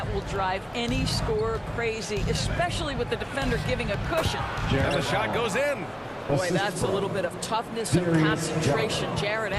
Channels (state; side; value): identical; both; correlation 1.00